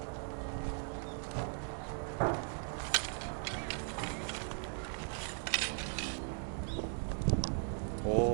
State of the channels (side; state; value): left; silent; 52 dB below the other